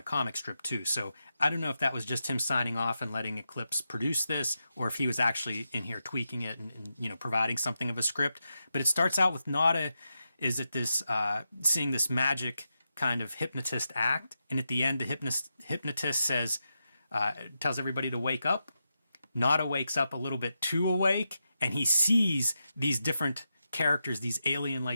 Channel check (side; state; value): both; inverted; correlation -0.87